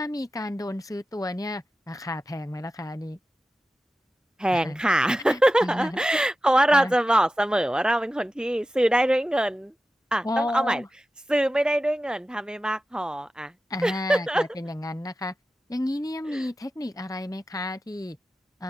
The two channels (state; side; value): normal; both; correlation 0.93